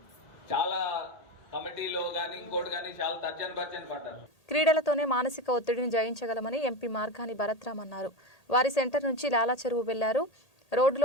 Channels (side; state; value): right; late; 1.8 ms